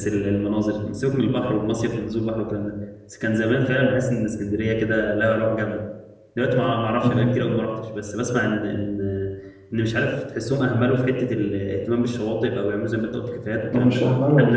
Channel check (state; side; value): identical; both; correlation 1.00